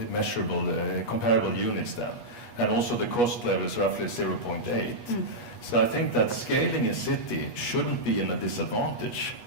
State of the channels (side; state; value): right; late; 8.3 ms